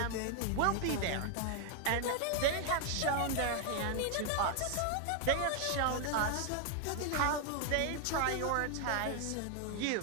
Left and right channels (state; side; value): different; both; correlation 0.00